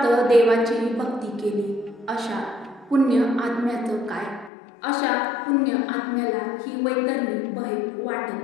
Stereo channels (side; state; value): right; drops out; at 4.5 s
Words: देवाची भक्ती केली, अशा पुण्य आत्म्याचं काय? अशा पुण्य आत्म्याला ही वैतरणी भय वाटत